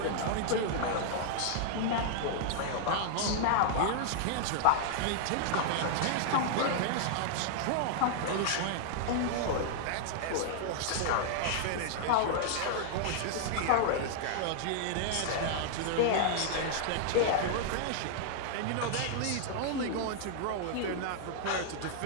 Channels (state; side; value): different; both; correlation -0.01